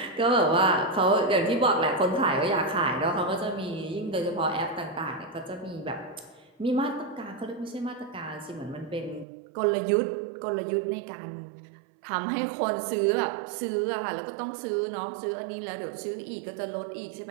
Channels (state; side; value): drops out; left; at 9.2 s